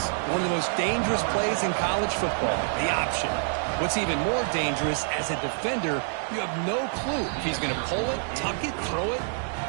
One of the most dangerous plays in college football, the option. What's even more dangerous, as a defender, you have no clue if he's going to pull it, tuck it, throw it.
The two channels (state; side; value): silent; left; digital silence